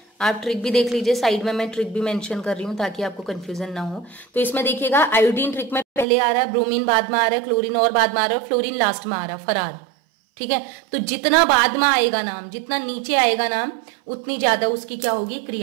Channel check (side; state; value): left; drops out; at 6.1 s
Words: आप ट्रिक भी देख लीजिए, साइड में मैं ट्रिक भी मेंशन कर रही हूँ ताकि आपको कंफ्यूजन ना हो। तो इसमें देखिएगा आयोडीन ट्रिक में पहले आ रहा है, ब्रोमीन बाद में आ रहा है, क्लोरीन और बाद में आ रहा है, फ्लोरीन लास्ट में आ रहा है, फरार, ठीक है। तो जितना बाद में आएगा नाम, जितना नीचे आएगा नाम, उतनी ज्यादा उसकी क्या होगी,